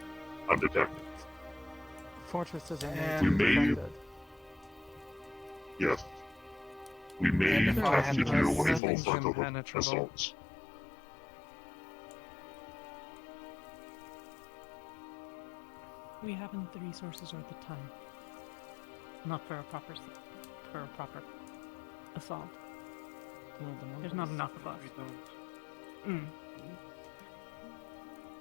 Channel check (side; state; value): right; drops out; at 8.8 s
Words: undetected. Fortress is We may, yes, we may have to do a full frontal assault. We haven't the resources or the time. Not for a proper assault. No, There's not enough of us.